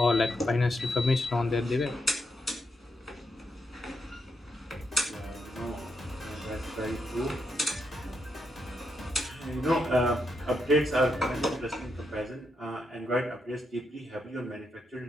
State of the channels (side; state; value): both; normal; correlation 0.82